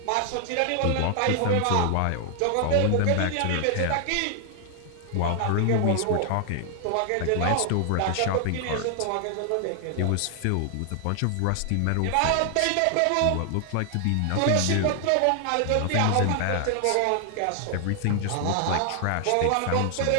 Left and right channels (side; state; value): both; different; correlation 0.00